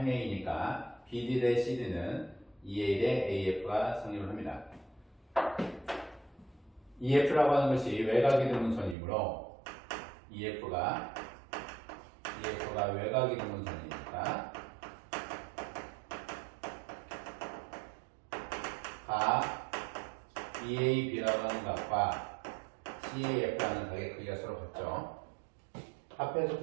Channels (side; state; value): left; drops out; at 9.0 s